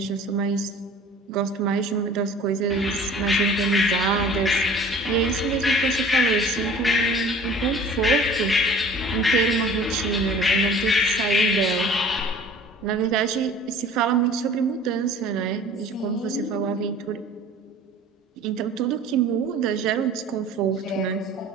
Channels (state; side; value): normal; both; correlation 0.46